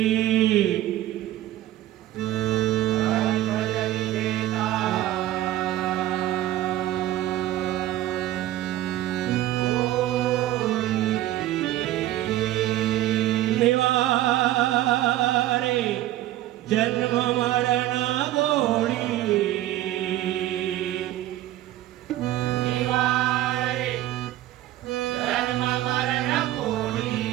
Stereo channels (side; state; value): left; quieter; 14.4 dB